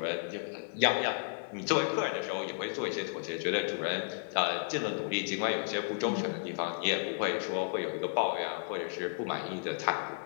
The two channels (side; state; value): right; silent; 56 dB below the other